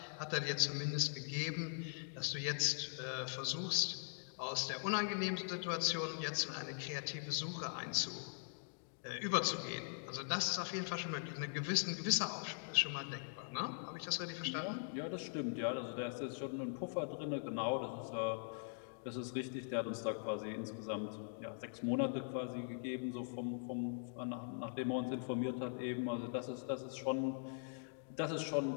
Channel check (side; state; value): right; silent; digital silence